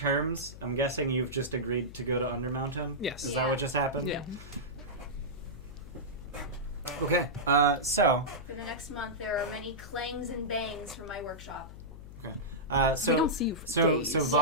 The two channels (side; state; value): left; noise; hum, 14 dB below the sound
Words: I'm guessing you've just agreed to go to Undermountain. Yes. Is that what just happened? Yeah. Okay. So for the next month, there are many clangs and bangs from my workshop. We so don't see you for days. so